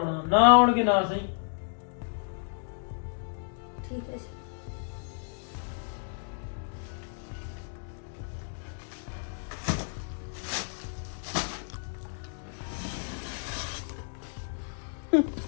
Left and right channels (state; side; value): silent; right; digital silence